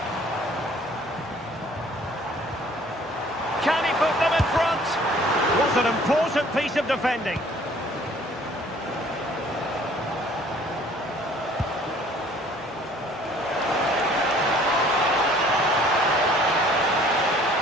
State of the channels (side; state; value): both; normal; correlation 0.55